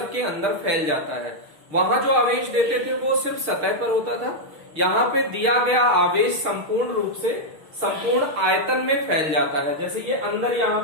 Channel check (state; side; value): late; left; 6.5 ms